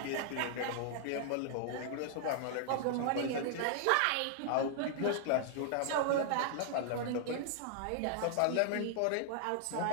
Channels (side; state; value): both; different; correlation -0.01